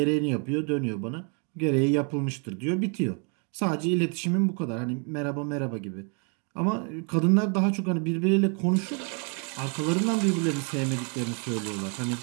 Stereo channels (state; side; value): quieter; left; 37.7 dB